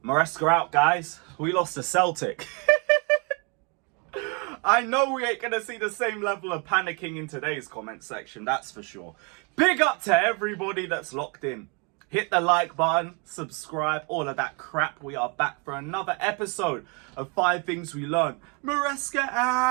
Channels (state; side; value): quieter; left; 33.8 dB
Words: Maresca out, guys. We lost to Celtic. I know we ain't going to see the same level of panicking in today's comment section, that's for sure. Big up to everybody that's locked in. Hit the like button, subscribe, all of that crap. We are back for another episode of 5 Things We Learned. Maresca